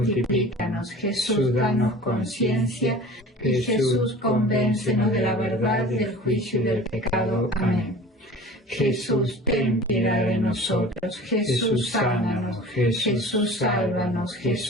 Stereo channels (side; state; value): both; normal; correlation 0.40